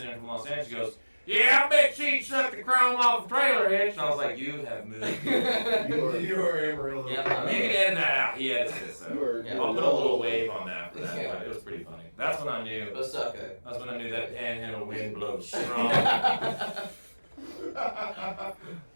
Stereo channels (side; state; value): both; inverted; correlation -1.00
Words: and from Los Angeles goes, yeah, I bet she sucked the chrome off a trailer hitch. And I was like, you have moved. You are Amarillo. You can edit that out. He edits it, so Yeah. I'll put a little wave on that for that. Yeah. But it was pretty funny. That's when I knew. That's okay. That's when I knew that panhandle wind blows strong.